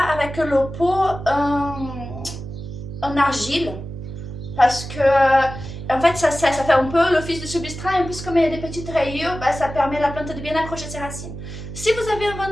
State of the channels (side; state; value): right; noise; hum, 10 dB below the sound